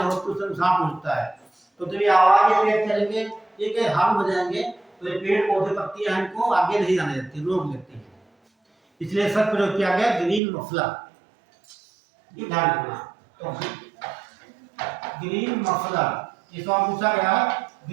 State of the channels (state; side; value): drops out; left; at 10.4 s